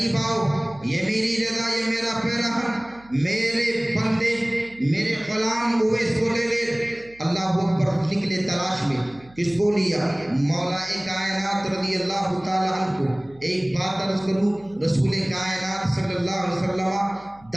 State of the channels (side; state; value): right; noise; hum, 26 dB below the sound